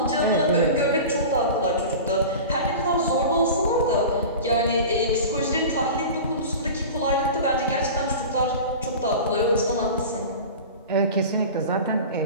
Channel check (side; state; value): both; inverted; correlation -0.33